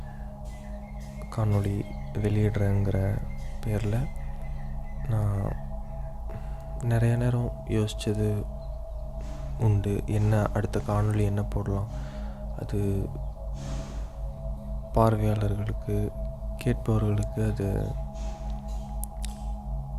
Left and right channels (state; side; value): identical; both; correlation 1.00